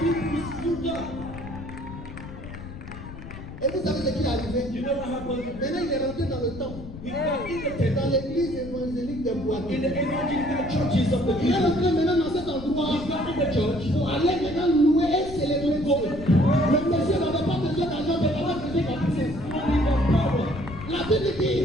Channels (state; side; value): noise; left; rumble, 12 dB below the sound